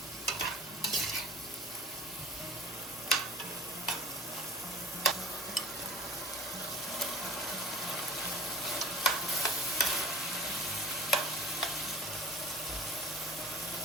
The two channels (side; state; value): both; normal; correlation 0.45